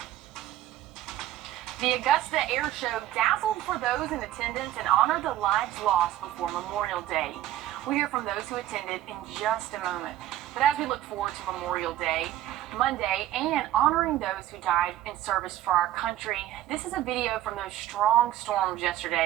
The Augusta Air Show dazzled for those in attendance and honored the lives lost before Memorial Day. We'll hear from those who attended in just a moment. But as we look forward to Memorial Day, Monday, and honoring those who died in service for our country, this is a video from those strong storms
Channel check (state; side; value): quieter; left; 13.2 dB